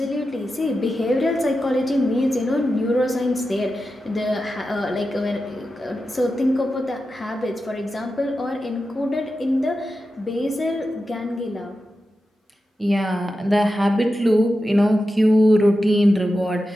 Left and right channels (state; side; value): normal; both; correlation 0.91